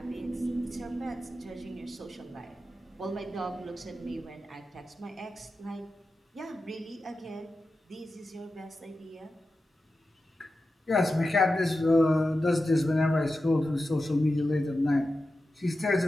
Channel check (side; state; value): both; normal; correlation 0.92